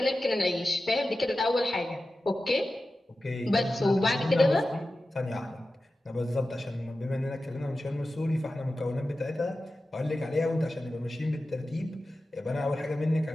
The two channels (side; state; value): both; normal; correlation 0.94